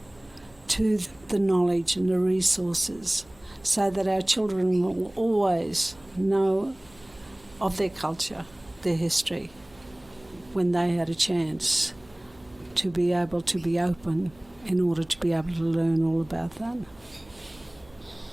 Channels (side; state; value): right; noise; hum, 27 dB below the sound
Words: to the knowledge and the resources so that our children will always know of their culture, their history, when they had a chance to be able to be open in order to be able to learn all about that.